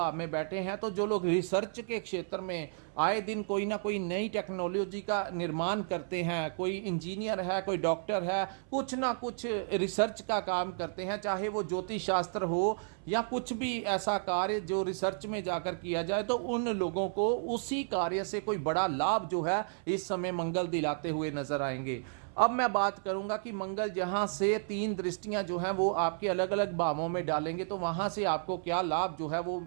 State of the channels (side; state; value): left; silent; 56 dB below the other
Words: में बैठे हैं। तो जो लोग रिसर्च के क्षेत्र में आए दिन कोई ना कोई नई टेक्नोलॉजी का निर्माण करते हैं, कोई इंजीनियर है, कोई डॉक्टर है, कुछ ना कुछ रिसर्च का काम करते हैं, चाहे वो ज्योतिष शास्त्र हो या कुछ भी ऐसा कार्य जो रिसर्च में जाकर किया जाए, तो उन लोगों को उसी कार्य से कोई बड़ा लाभ जो है इस समय मंगल दिलाते हुए नजर आएंगे। अब मैं बात करूंगा कि मंगल जहां से 3 दृष्टियां जो हैं वो आपके अलग अलग भावों में डालेंगे तो वहां से आपको क्या लाभ जो है वो